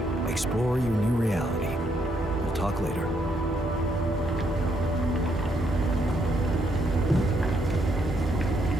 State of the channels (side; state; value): both; normal; correlation 0.74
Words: Explore your new reality. We'll talk later.